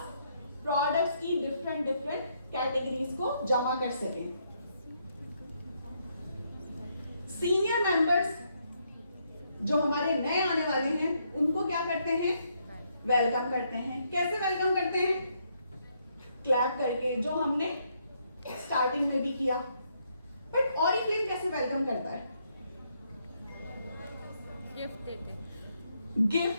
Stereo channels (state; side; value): inverted; both; correlation -0.75